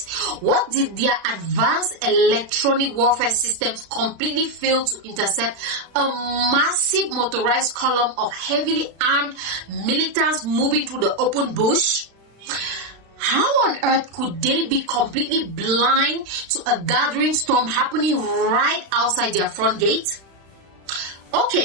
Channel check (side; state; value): left; late; 36 ms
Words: What did their advanced electronic warfare systems completely fail to intercept a massive motorized column of heavily armed militants moving through the open bush? How on earth could they be completely blind to a gathering storm happening right outside their front gate?